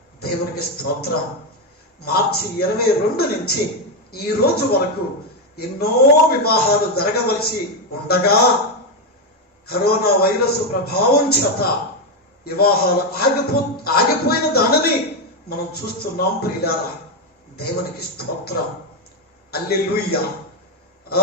దేవునికి స్తోత్రం. మార్చి 22 నుంచి ఈ రోజు వరకు ఎన్నో వివాహాలు జరగవలసి ఉండగా కరోనా వైరస్ ప్రభావం చేత వివాహాలు ఆగిపోయిన దానిని మనం చూస్తున్నాం ప్రియులారా. దేవునికి స్తోత్రం. హల్లెలూయా,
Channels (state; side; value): normal; both; correlation 0.06